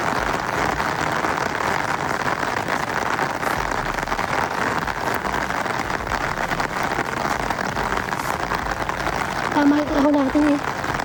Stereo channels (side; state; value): both; identical; correlation 1.00